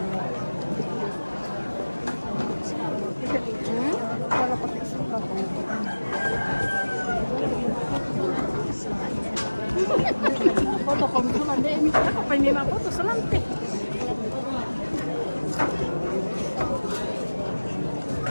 Foto kamu tuh ada ini, apa ini foto selante.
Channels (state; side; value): inverted; both; correlation -1.00